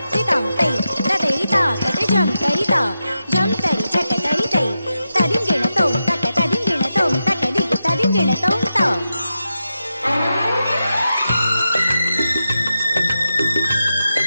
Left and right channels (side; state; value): both; inverted; correlation -0.89